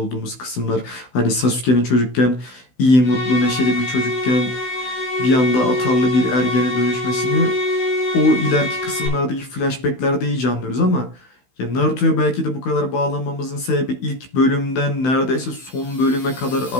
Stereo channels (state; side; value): late; right; 16 ms